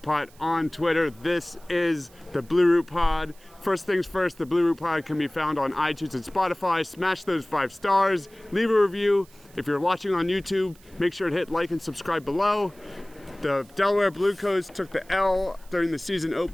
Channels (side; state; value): right; noise; hiss, 27 dB below the sound